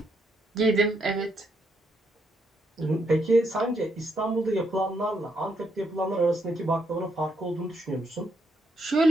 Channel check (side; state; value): both; normal; correlation 0.76